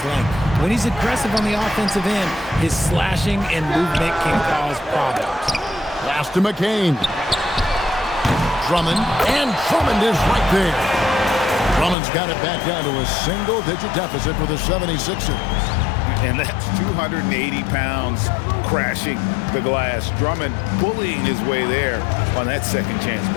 length. When he's aggressive on the offensive end, his slashing and movement can cause problems. Pass to McCain. Drummond, and Drummond is right there. Drummond's got it back down to a single-digit deficit for the 76ers. And that's 280 pounds crashing the glass. Drummond bullying his way there on that second chance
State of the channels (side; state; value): right; drops out; at 12.0 s